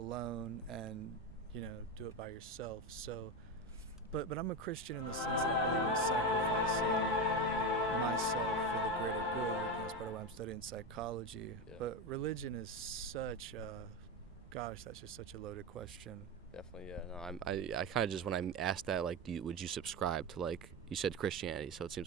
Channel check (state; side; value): normal; both; correlation 0.17